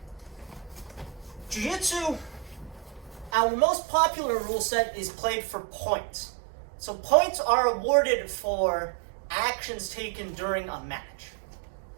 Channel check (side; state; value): left; drops out; at 3.3 s